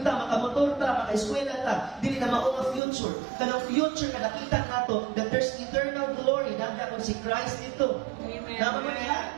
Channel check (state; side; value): drops out; left; at 2.8 s